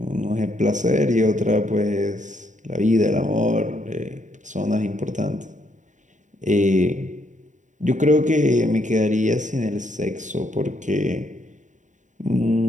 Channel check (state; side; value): late; left; 0.36 ms